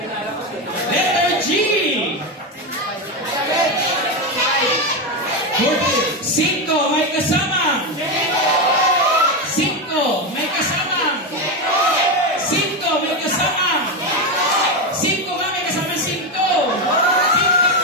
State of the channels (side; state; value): both; normal; correlation 0.11